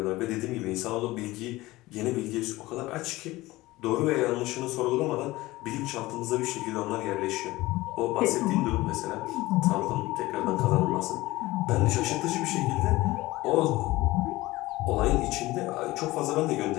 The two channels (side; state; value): right; quieter; 19.0 dB